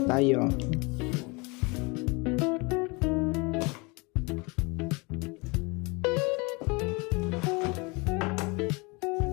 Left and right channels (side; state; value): right; quieter; 27.7 dB